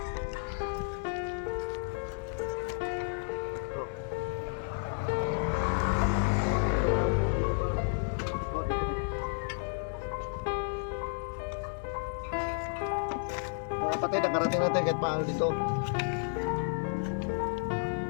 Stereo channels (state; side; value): silent; right; digital silence